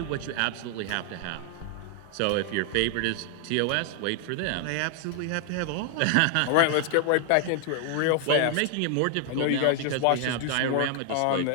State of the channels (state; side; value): different; both; correlation 0.00